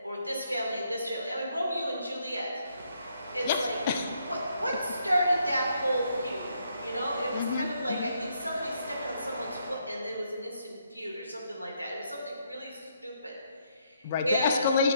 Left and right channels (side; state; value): both; inverted; correlation -0.74